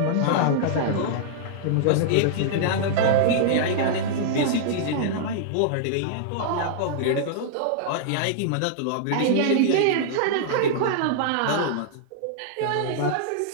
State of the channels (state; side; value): different; both; correlation -0.01